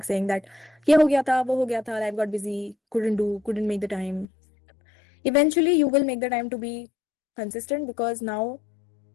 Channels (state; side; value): drops out; right; at 4.2 s